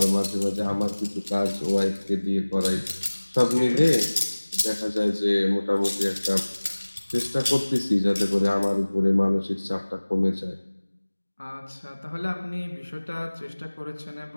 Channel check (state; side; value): inverted; both; correlation -1.00